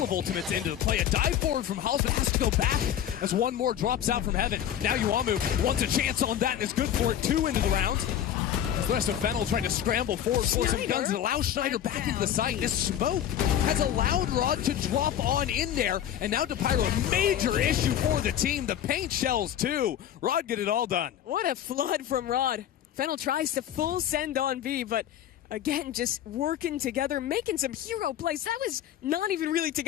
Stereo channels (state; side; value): quieter; right; 10.6 dB